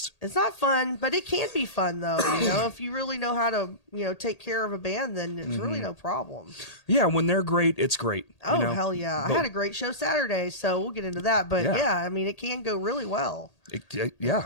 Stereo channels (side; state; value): right; late; 1.8 ms